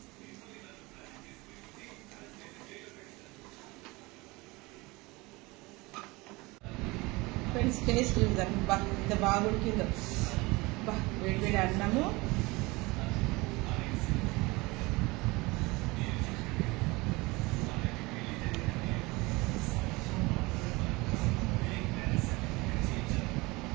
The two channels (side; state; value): left; quieter; 23.5 dB